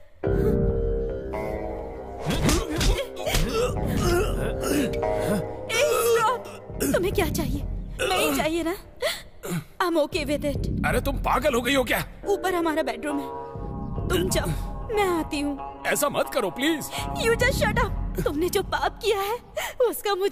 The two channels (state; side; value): identical; both; correlation 1.00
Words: तुम्हें क्या चाहिए? नहीं चाहिए ना? I'm okay with it. अरे तुम पागल हो गई हो क्या? ऊपर हमारा बेडरूम है, तुम जाओ, मैं आती हूँ। ऐसा मत करो please. You just shut up. तुमने जो पाप किया है उसका